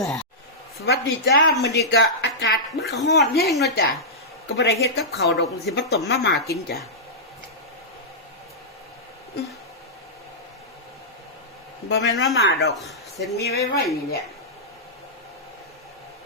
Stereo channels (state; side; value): normal; both; correlation -0.13